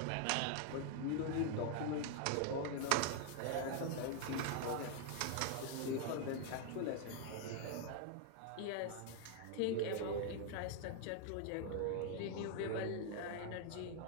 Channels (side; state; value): both; different; correlation 0.00